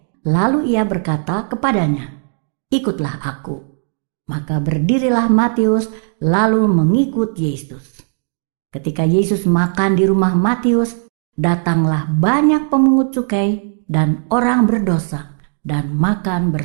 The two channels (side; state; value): left; silent; 63 dB below the other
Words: Lalu ia berkata kepadanya, "Ikutlah aku." Maka berdirilah Matius lalu mengikut Yesus. Ketika Yesus makan di rumah Matius, datanglah banyak pemungut cukai dan orang berdosa dan makan